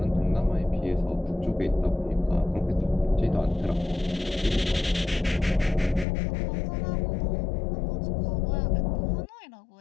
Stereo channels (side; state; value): right; drops out; at 6.1 s